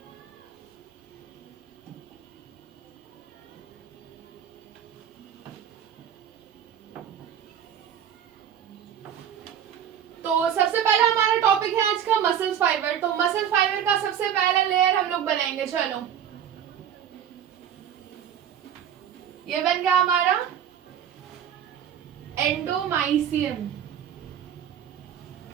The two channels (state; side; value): quieter; left; 9.2 dB